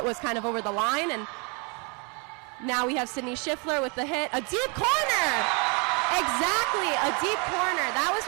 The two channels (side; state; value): left; quieter; 33.1 dB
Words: was kind of over the line, and now we have Sydney Schiffler with the hit. A deep corner! Exactly, a deep corner. That was